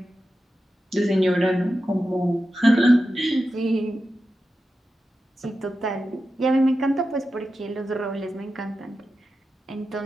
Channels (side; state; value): both; normal; correlation 0.91